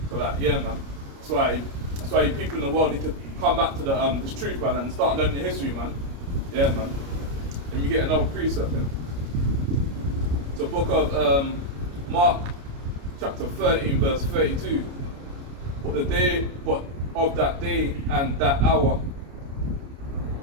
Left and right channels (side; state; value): left; late; 29 ms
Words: So like, yeah, man. That's why you people in the world need to come back to this truth, man, and start learning the history, man. Yeah, man. And you get another precept, man. So book of Mark, chapter 13, verse 32. But of that day and that hour,